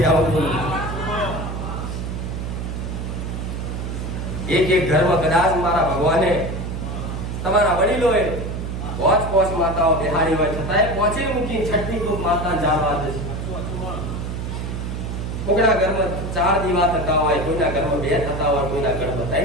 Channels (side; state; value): right; noise; hum, 5 dB below the sound